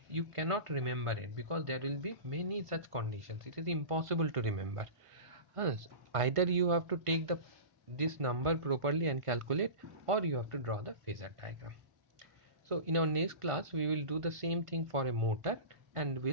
you cannot remember it because there will be many such conditions. It is impossible to remember. Either you have to take this number properly and calculate, or you have to draw the phasor diagram. So in our next class we will do the same thing for a motor, and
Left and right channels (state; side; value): late; left; 1.5 ms